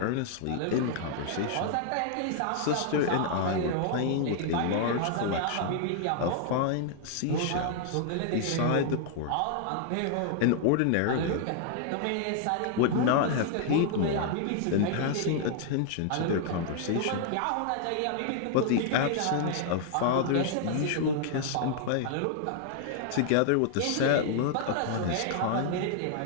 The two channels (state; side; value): different; both; correlation -0.01